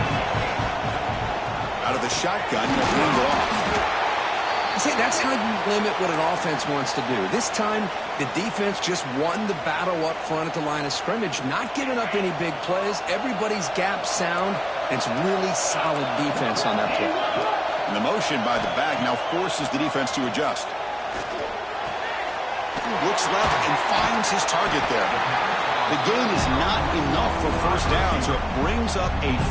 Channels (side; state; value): both; identical; correlation 1.00